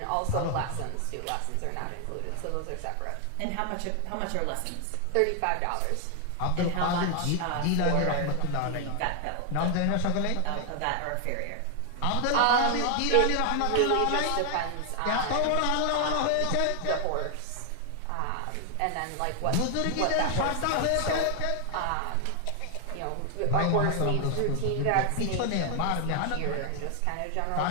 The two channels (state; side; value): different; both; correlation 0.00